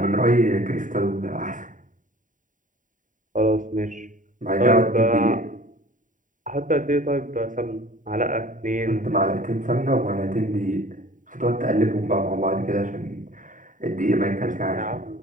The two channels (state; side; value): late; left; 0.38 ms